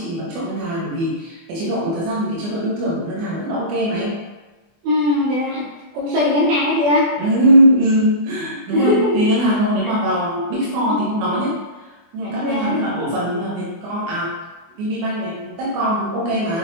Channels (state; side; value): late; left; 24 ms